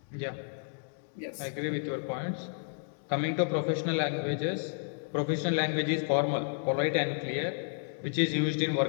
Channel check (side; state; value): right; silent; digital silence